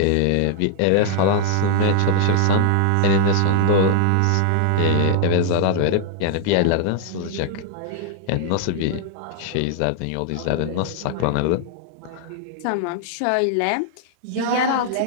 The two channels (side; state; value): both; different; correlation -0.01